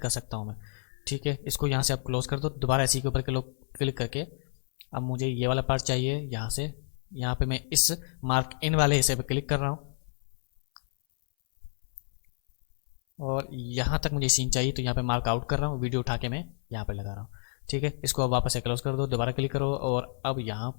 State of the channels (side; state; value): right; silent; 58 dB below the other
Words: सकता हूँ मैं, ठीक है। इसको यहाँ से आप क्लोज कर दो, दोबारा इसी के ऊपर क्लिक करके अब मुझे ये वाला पार्ट चाहिए। यहाँ से यहाँ पे मैं इस मार्क इन वाले हिस्से पे क्लिक कर रहा हूँ और यहाँ तक मुझे सीन चाहिए, तो यहाँ पे मार्क आउट कर रहा हूँ, वीडियो उठा के मैं यहाँ पे लगा रहा हूँ, ठीक है। इसको अब वापस से क्लोज कर दो, दोबारा क्लिक करो और अब यहाँ